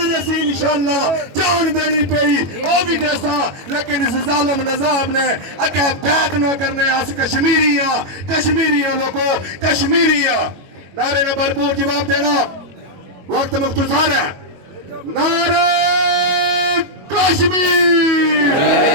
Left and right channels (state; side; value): late; left; 22 ms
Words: रसील इंशाअल्लाह जान देनी पई वो भी देसा, लेकिन इस जालिम निजाम ने अगे बैत न करने। अस कश्मीरिया लोगों कश्मीरिया नारे ने भरपूर जवाब देना। वक्त मुख्तसार है। नारे कश्मीर।